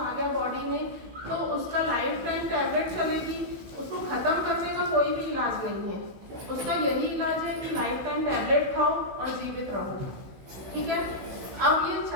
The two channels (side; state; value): left; late; 16 ms